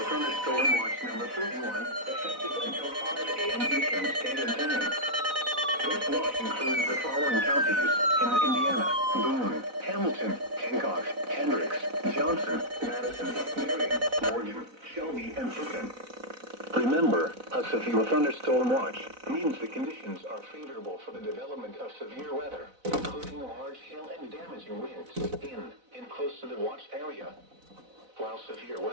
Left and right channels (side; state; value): left; late; 4.0 ms